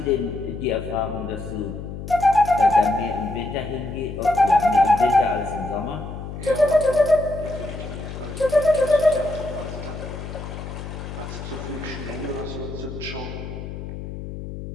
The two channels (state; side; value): noise; left; hum, 9 dB below the sound